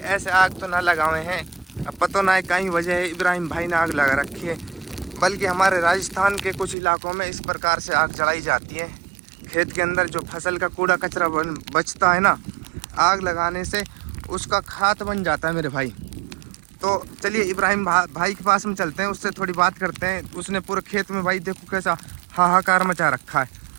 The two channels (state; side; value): drops out; left; at 6.8 s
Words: आग तो ना लगाए हैं, अब पता ना है कहीं वजह है इब्राहिम भाई ने आग लगा रखी है, बल्कि हमारे राजस्थान के कुछ इलाकों में इस प्रकार से आग जलाई जाती है। खेत के अंदर जो फसल का कूड़ा कचरा बचता है ना, आग लगाने से उसका खाद बन जाता है मेरे भाई। तो चलिए इब्राहिम भाई के पास में चलते हैं, उससे थोड़ी बात करते हैं। उसने पूरे खेत में भाई देखो कैसा हाहाकार मचा रखा है।